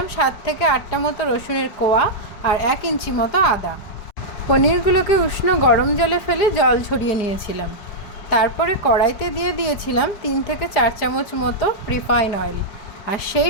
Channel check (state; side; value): late; right; 4.8 ms